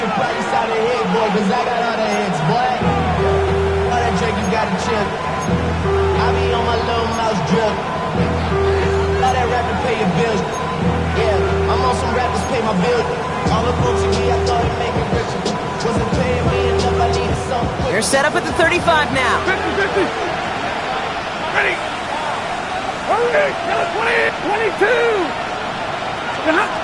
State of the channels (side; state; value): both; identical; correlation 1.00